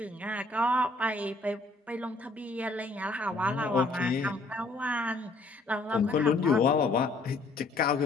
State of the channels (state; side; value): quieter; right; 3.2 dB